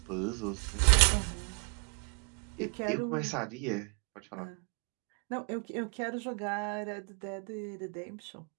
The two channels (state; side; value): quieter; left; 36.7 dB